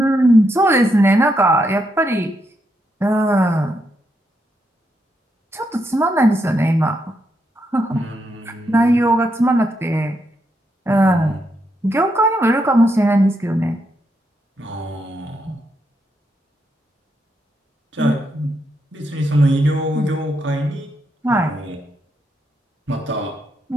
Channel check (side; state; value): both; normal; correlation 0.80